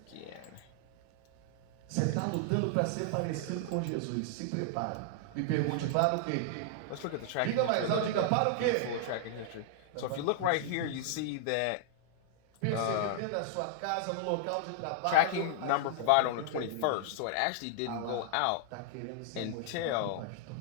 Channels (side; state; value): both; different; correlation -0.01